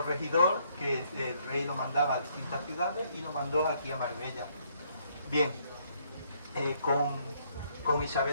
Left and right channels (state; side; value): inverted; both; correlation -0.69